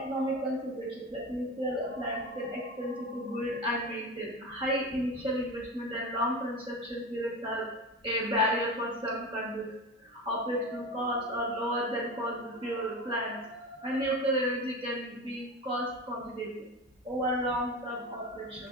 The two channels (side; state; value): both; normal; correlation 0.27